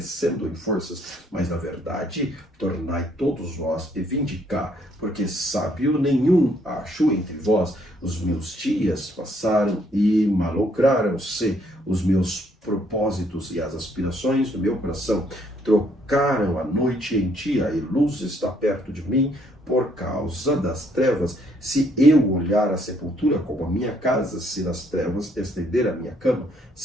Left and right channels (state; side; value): normal; both; correlation 0.68